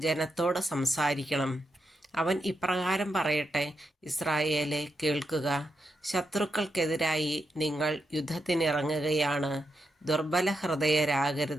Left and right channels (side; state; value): both; normal; correlation 0.84